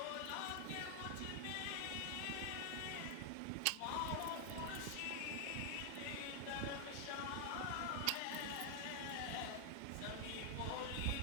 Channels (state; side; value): different; both; correlation 0.00